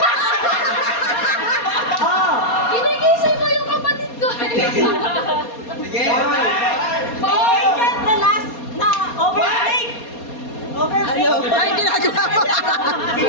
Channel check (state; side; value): late; right; 4.2 ms